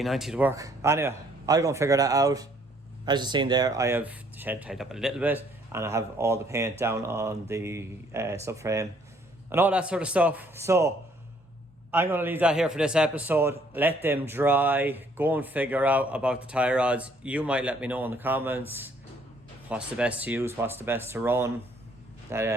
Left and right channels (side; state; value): both; normal; correlation 0.63